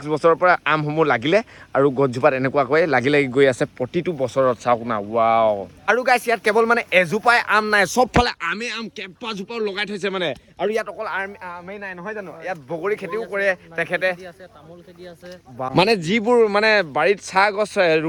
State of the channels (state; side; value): identical; both; correlation 1.00